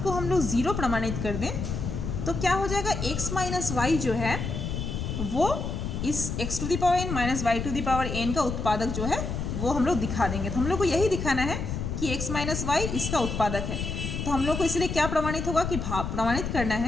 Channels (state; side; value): noise; left; rumble, 4 dB below the sound